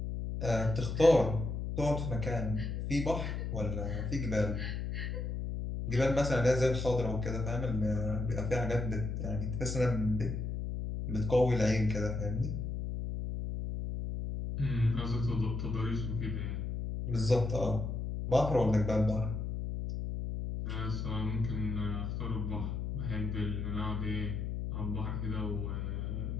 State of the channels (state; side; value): noise; left; hum, 3 dB below the sound